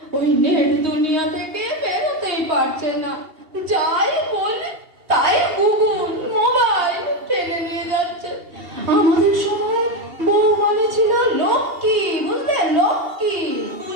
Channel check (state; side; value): late; left; 2.8 ms